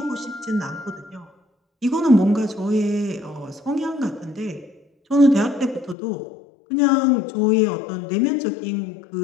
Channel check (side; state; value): right; drops out; at 6.0 s